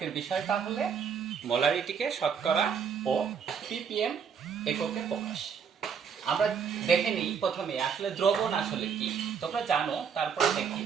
বিষয়টা হলে মোলারিটিকে শতকরা ও ppm এককে প্রকাশ। আমরা দেখে নিই প্রথমে আসলে দ্রবণ আসলে কি। তোমরা জানো, তারপরে দেখি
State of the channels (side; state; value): left; quieter; 6.8 dB